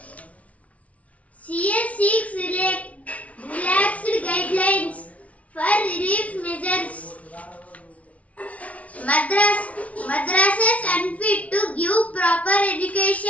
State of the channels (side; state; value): right; late; 0.067 ms